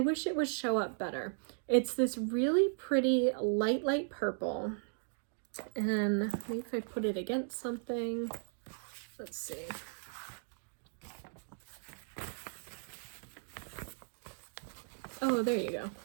it would show up better. It's this really pretty light purple. And maybe if I put it against something, let's see. Oh, there you go.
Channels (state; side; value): silent; left; digital silence